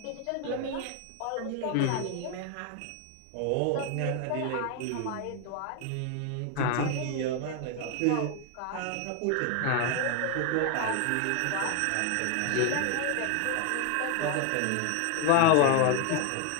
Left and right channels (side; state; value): both; different; correlation 0.01